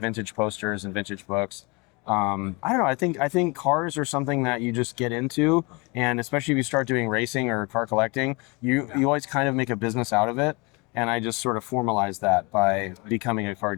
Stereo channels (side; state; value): right; quieter; 28.0 dB